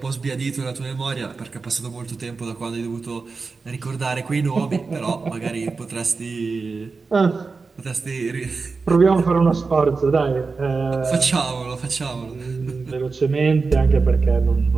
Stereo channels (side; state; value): left; quieter; 4.4 dB